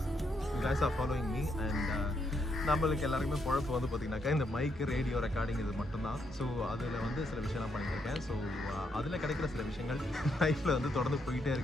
guys are following me and நம்மளுக்கு எல்லாருக்குமே குழப்பம் வந்து பார்த்திங்கனாக்கா இந்த மைக்கு ரேடியோ ரெக்கார்டிங் இது மட்டும்தான். ஸோ அதில் வந்து சில விஷயம்லாம் பண்ணியிருக்கேன். ஸோ அதில் கிடைக்கிற சில விஷயங்கள் லைஃப்பில் வந்து தொடர்ந்து போயிட்டே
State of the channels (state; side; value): normal; both; correlation 0.77